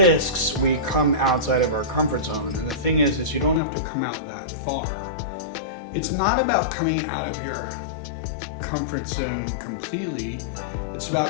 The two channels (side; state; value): right; drops out; at 3.6 s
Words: we come outside of our comfort zone. And the thing is you don't have to come out that far. It's not about coming out of your comfort zone completely. It's